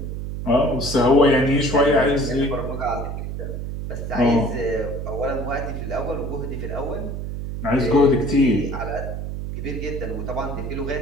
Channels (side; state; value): right; noise; hum, 5 dB below the sound